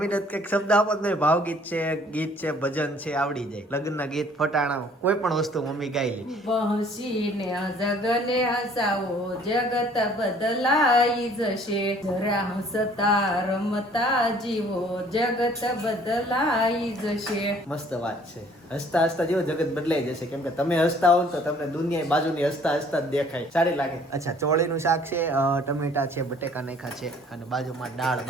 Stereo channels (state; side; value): normal; both; correlation 0.56